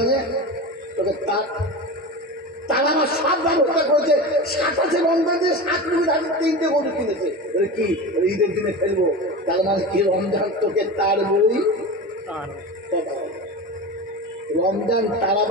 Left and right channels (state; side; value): normal; both; correlation 0.27